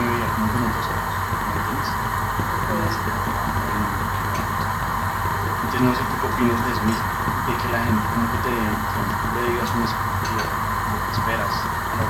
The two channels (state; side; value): identical; both; correlation 1.00